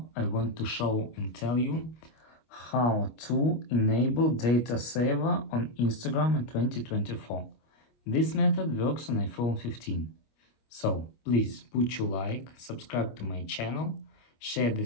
I want to show and tell you how to enable data saver on Instagram in 2024. This method works on iPhone 15. So please put your like, subscribe to my channel, share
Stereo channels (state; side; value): late; right; 25 ms